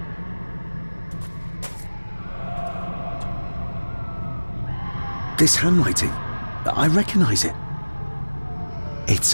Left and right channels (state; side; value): inverted; both; correlation -1.00